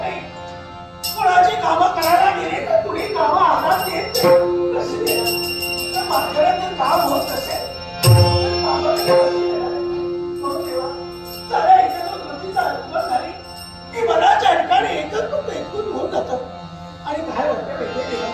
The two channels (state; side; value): identical; both; correlation 1.00